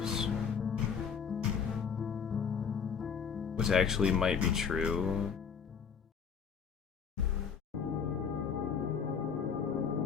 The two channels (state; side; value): quieter; right; 6.7 dB